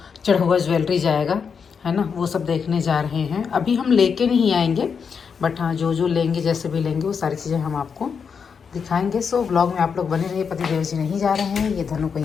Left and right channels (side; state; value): right; quieter; 6.3 dB